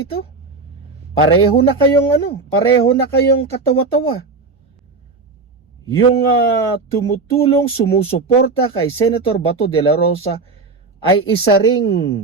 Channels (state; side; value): quieter; left; 4.0 dB